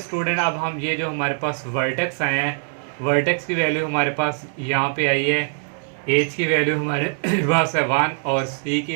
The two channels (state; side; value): silent; left; 58 dB below the other